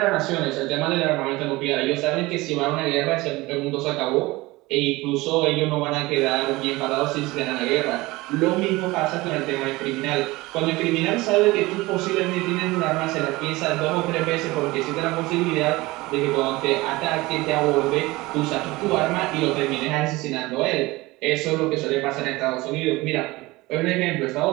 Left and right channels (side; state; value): left; quieter; 20.9 dB